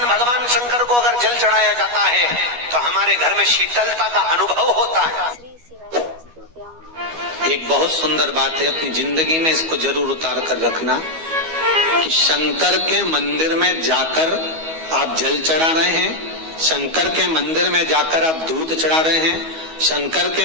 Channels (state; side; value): late; left; 12 ms